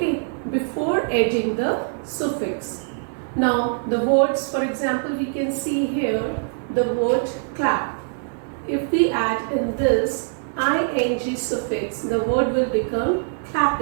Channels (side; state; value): left; silent; 63 dB below the other